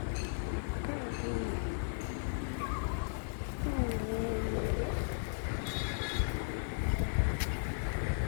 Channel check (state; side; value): silent; right; 54 dB below the other